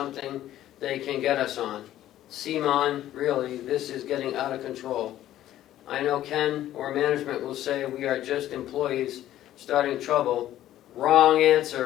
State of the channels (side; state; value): right; quieter; 13.0 dB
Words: they can get us on. Simon, really, this is getting out of control. I know Ken or management will say we are just employees starting trouble, wrong